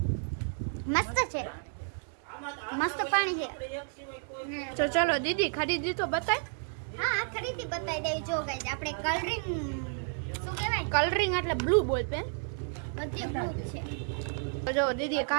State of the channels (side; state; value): left; silent; 57 dB below the other